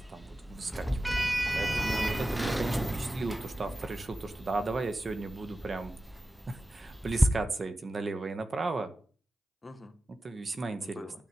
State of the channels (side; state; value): both; normal; correlation 0.94